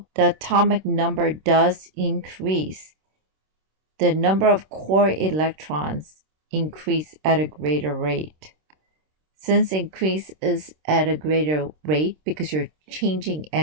the atomic number does increase, the number of core electrons increase at a greater rate. Since increase is at a greater rate because you're changing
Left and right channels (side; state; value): left; late; 26 ms